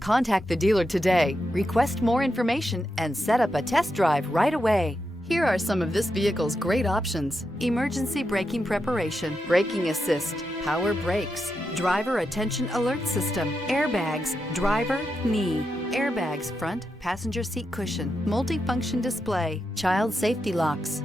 the dealer today, request more information, and set up a test drive right away. Here are some of this vehicle's great options: emergency braking preparation, braking assist, power brakes, driver attention alert system, airbags, driver, knee, airbags front, passenger seat cushion, multifunction display, child safety locks,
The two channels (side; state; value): both; normal; correlation 0.86